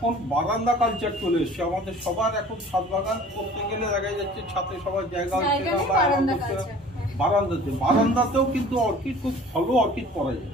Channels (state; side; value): normal; both; correlation 0.47